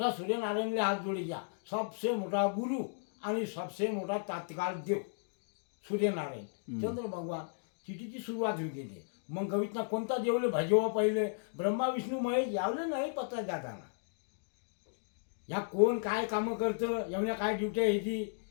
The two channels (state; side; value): silent; right; digital silence